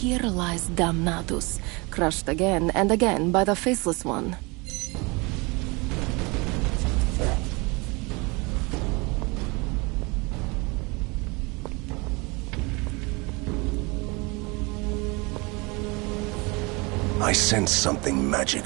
lies Damnatus," crushed again and again by the Faceless One. I sense something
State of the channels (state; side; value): quieter; left; 27.2 dB